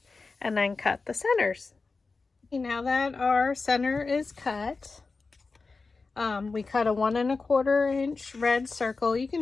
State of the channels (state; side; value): quieter; right; 4.1 dB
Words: and then cut the centers. Now that our center is cut, we cut a 1¼ inch red circle. You